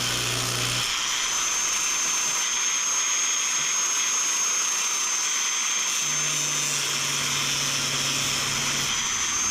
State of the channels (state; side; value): identical; both; correlation 1.00